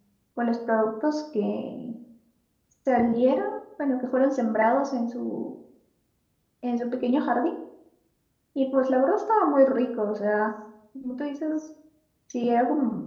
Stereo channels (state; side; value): identical; both; correlation 1.00